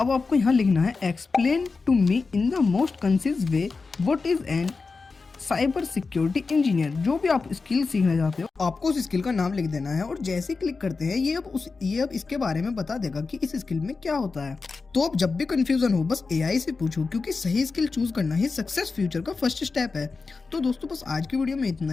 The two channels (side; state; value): right; quieter; 4.3 dB